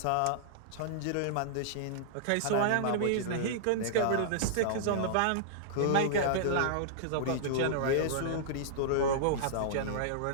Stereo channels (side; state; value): both; different; correlation -0.02